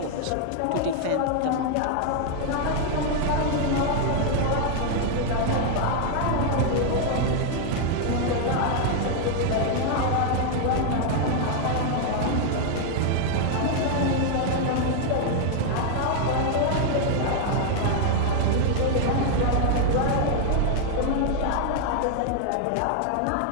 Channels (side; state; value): both; different; correlation 0.00